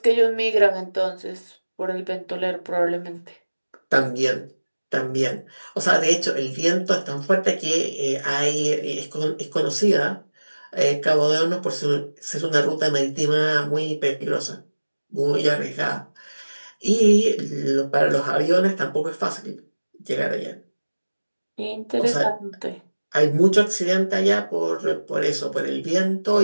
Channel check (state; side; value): inverted; both; correlation -1.00